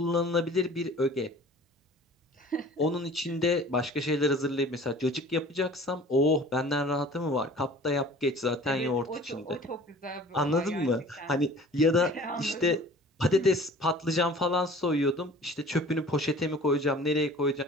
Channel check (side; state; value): both; normal; correlation 0.46